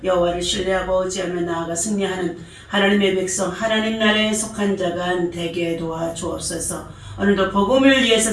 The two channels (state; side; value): identical; both; correlation 1.00